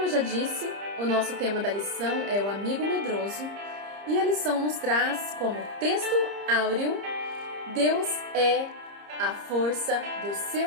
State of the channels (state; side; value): late; left; 30 ms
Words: eu já disse, o nosso tema da lição é o amigo medroso. E a lição nos traz como texto áureo: Deus é a força do